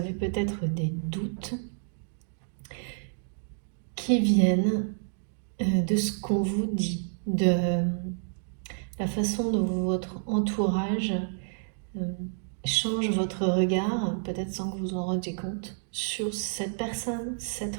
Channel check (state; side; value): silent; left; digital silence